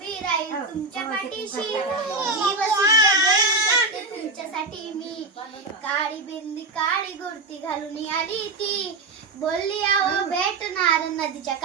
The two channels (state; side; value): quieter; left; 3.5 dB